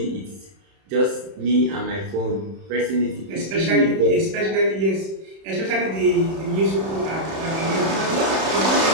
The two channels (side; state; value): left; late; 31 ms